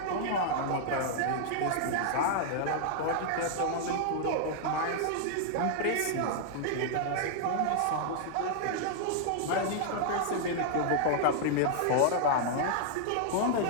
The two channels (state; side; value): different; both; correlation -0.01